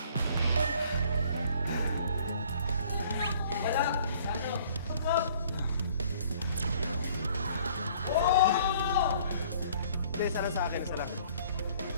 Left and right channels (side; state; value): both; inverted; correlation -0.56